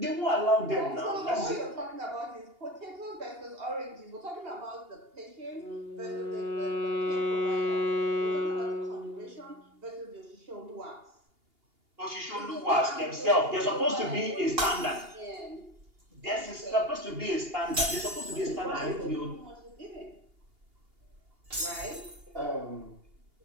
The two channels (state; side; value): late; left; 2.8 ms